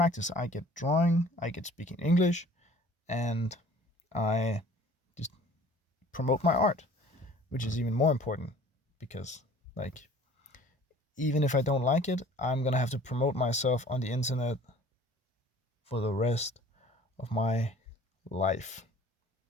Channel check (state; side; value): normal; both; correlation 0.49